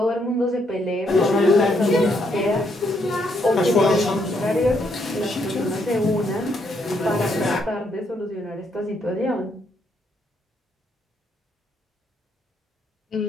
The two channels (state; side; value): normal; both; correlation 0.74